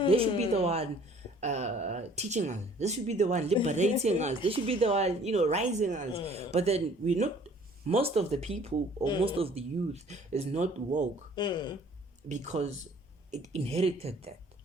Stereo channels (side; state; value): both; normal; correlation 0.54